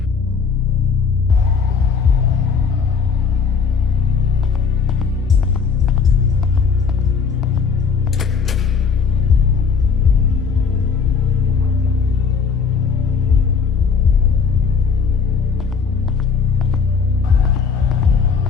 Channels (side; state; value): right; quieter; 5.8 dB